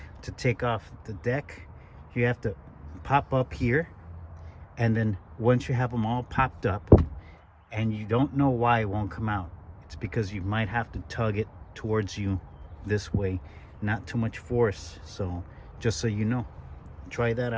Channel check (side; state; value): both; identical; correlation 1.00